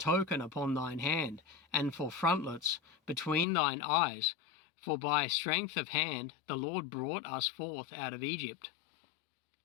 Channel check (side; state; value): right; drops out; at 3.5 s